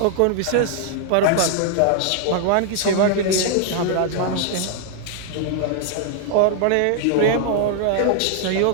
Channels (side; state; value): both; different; correlation 0.00